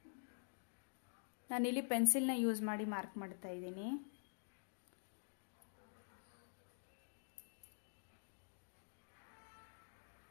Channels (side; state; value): right; silent; digital silence